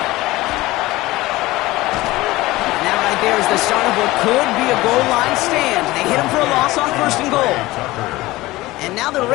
And that right there is the start of what could be a goal line stand. They hit him for a loss on 1st and goal. And now the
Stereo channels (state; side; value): quieter; right; 18.9 dB